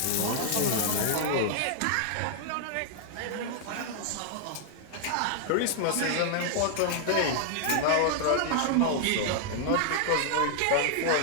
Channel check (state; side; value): different; both; correlation -0.01